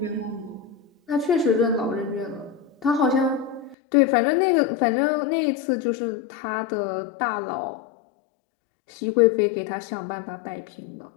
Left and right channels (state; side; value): drops out; right; at 3.8 s